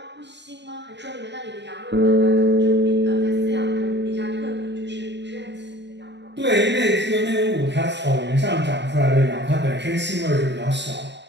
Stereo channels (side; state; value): left; late; 0.51 ms